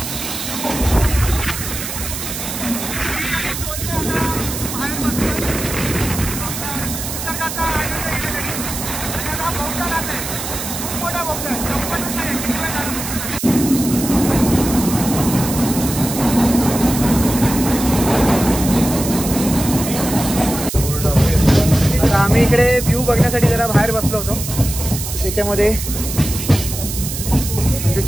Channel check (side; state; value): right; noise; hiss, 6 dB below the sound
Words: आम्ही इकडे व्ह्यू बघण्यासाठी जरा बाहेर बसलो होतो. त्याच्यामध्ये